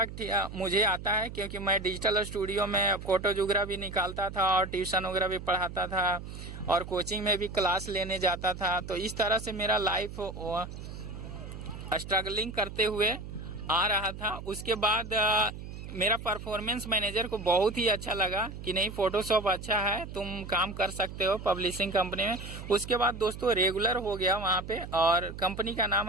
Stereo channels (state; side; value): noise; right; hum, 10 dB below the sound